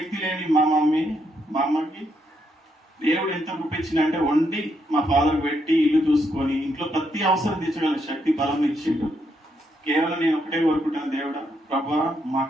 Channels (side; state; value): both; normal; correlation 0.78